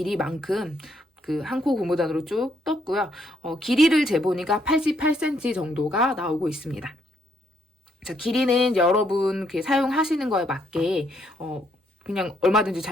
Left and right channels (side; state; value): both; normal; correlation 0.73